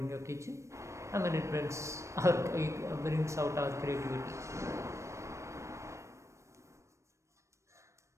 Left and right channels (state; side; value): late; left; 0.14 ms